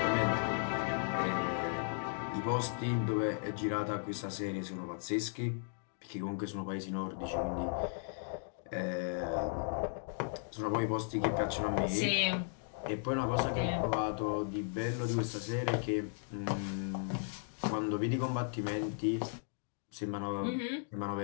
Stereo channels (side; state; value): right; silent; digital silence